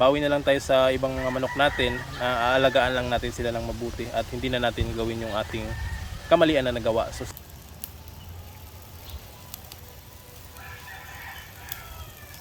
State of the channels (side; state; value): both; identical; correlation 1.00